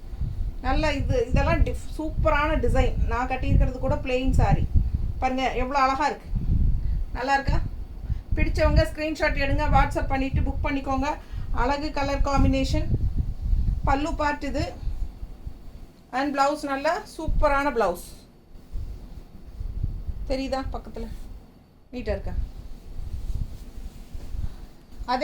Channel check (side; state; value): both; identical; correlation 1.00